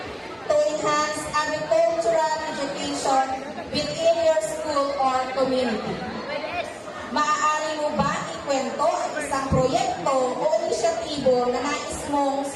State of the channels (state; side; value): identical; both; correlation 1.00